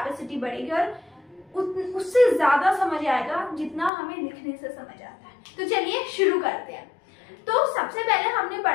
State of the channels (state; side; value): drops out; right; at 3.9 s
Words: बढ़ेगी और उससे ज्यादा समझ आएगा जितना हमें लिखने से समझ आता है। तो चलिए शुरू करते हैं। तो सबसे पहले हमने